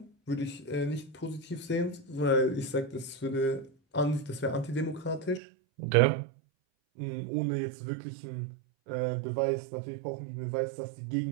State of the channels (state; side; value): drops out; left; at 5.4 s